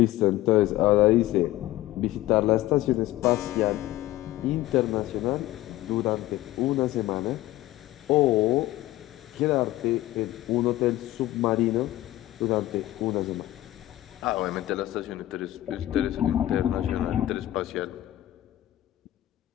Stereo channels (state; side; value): quieter; right; 15.6 dB